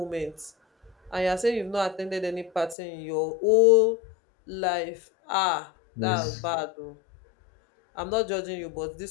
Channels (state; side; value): drops out; right; at 2.8 s